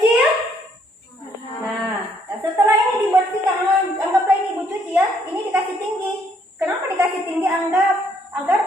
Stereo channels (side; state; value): both; normal; correlation 0.68